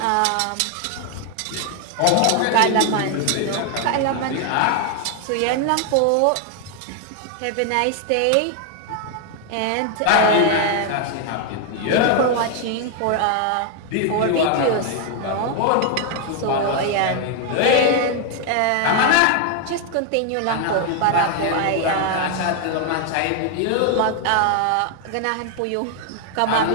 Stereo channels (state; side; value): different; both; correlation 0.00